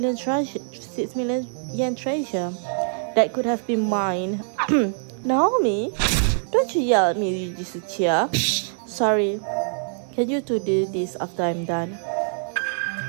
yen treasure that could have been mine. Naomi, don't you yell at me, Yujisuchiya. Sorry. Can you two do this after I'm done?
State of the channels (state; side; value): silent; left; digital silence